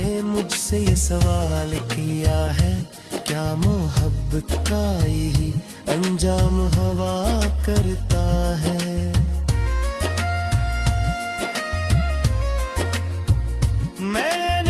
मुझसे ये सवाल किया है, क्या मोहब्बत का ही अंजाम हवा करता है।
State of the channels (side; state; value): both; identical; correlation 1.00